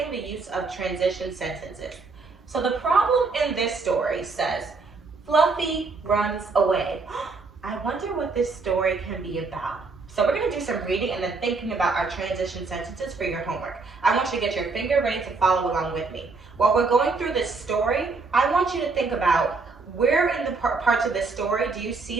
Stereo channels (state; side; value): quieter; left; 4.1 dB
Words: the use of transition sentences. So the problem in this story says, Fluffy runs away. I wonder what this story can be about. So we're going to do some reading and then thinking about our transition sentences for your homework. I want you to get your finger ready to follow along with me. While we're going through this story, I want you to think about where in the parts of this story do you